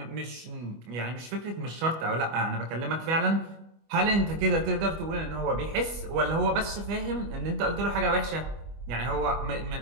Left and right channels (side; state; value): left; late; 25 ms